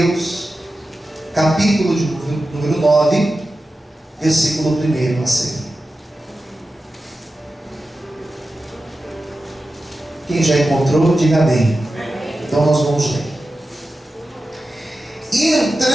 capítulo de número 9, versículo 1 a seguir. Quem já encontrou, diga amém. Então nós vamos ler. E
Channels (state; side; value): normal; both; correlation 0.93